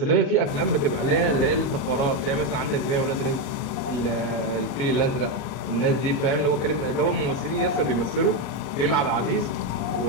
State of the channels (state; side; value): late; right; 38 ms